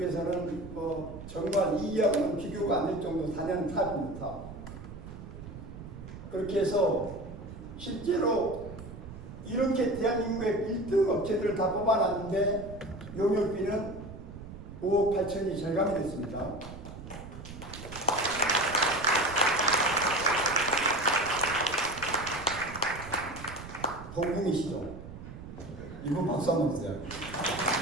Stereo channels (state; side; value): noise; right; rumble, 13 dB below the sound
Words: 정말 이하고는 비교가 안 될 정도 4년 탑입니다. 그렇게 해서 실제로 이렇게 대한민국의 1등 업체들을 다 뽑아놨는데 용역비는 5억 8천이 절감이 됐습니다. 동궁이시죠? 이분 박수 한번 주세요.